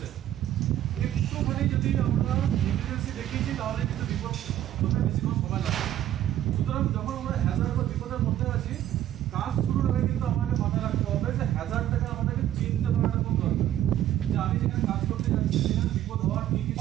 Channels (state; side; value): quieter; left; 12.2 dB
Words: একটুখানি যদি আমরা ইমার্জেন্সি দেখিয়েছি তাহলে কিন্তু বিপদ হতে বেশিক্ষণ সময় লাগে। সুতরাং যখন আমরা হ্যাজার্ড বা বিপদের মধ্যে আছি, কাজ শুরুর আগে কিন্তু আমাকে মাথায় রাখতে হবে যে হ্যাজার্ডটাকে আমাদেরকে চিনতে পারাটা খুব দরকার, যে আমি যেখানে কাজ করতে যাচ্ছি সেখানে বিপদ হওয়ার কী কী